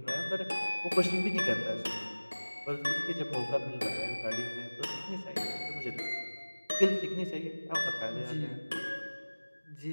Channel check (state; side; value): inverted; both; correlation -1.00